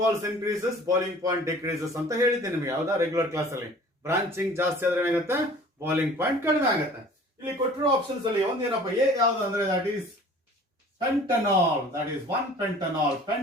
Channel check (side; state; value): both; normal; correlation 0.48